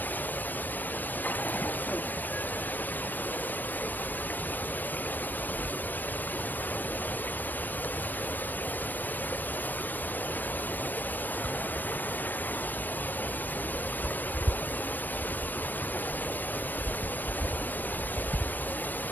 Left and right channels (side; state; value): right; late; 0.089 ms